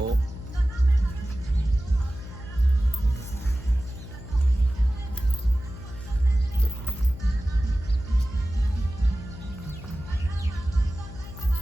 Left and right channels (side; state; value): left; noise; hum, 13 dB below the sound